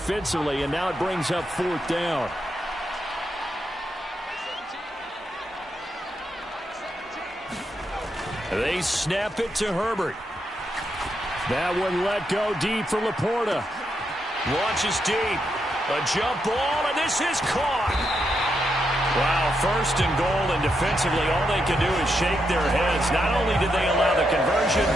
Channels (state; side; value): normal; both; correlation 0.82